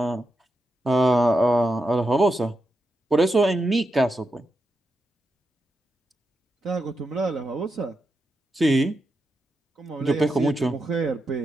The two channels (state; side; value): normal; both; correlation 0.87